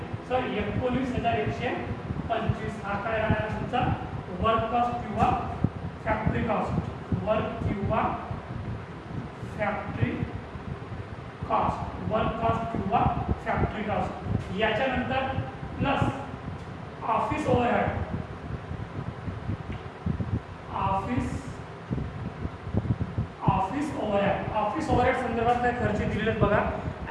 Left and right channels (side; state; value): both; identical; correlation 1.00